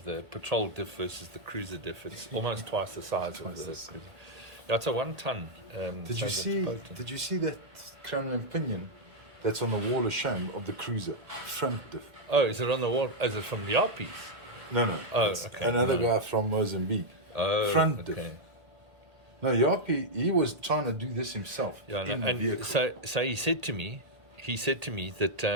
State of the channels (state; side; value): late; left; 1.8 ms